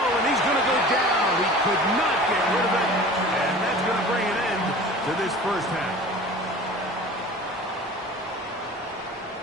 and he's going to go down. He could not get rid of it, and that's going to bring an end to this first half.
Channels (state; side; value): normal; both; correlation 0.40